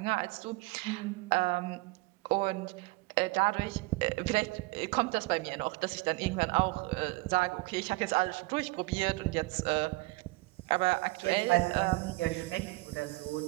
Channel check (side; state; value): left; quieter; 23.4 dB